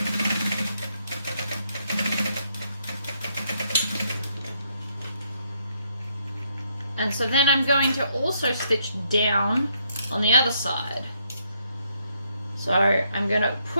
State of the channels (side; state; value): both; inverted; correlation -0.73